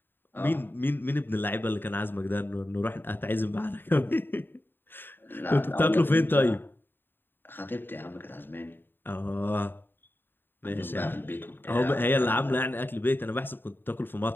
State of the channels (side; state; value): right; late; 0.096 ms